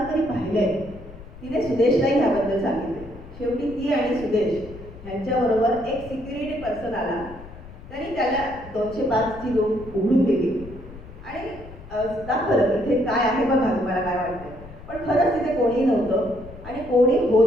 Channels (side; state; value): left; noise; rumble, 16 dB below the sound